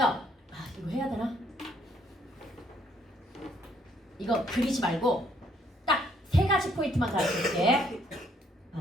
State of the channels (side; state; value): both; normal; correlation 0.67